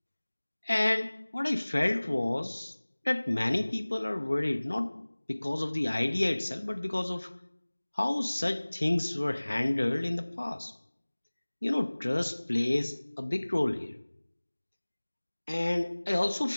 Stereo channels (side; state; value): both; inverted; correlation -1.00